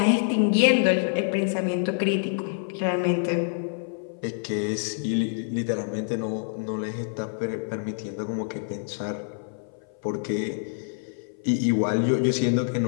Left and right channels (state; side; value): silent; right; 57 dB below the other